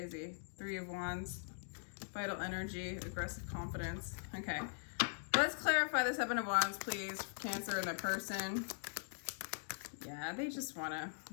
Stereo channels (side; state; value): right; silent; digital silence